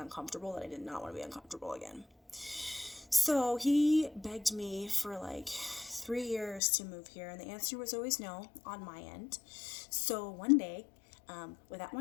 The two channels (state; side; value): drops out; right; at 6.6 s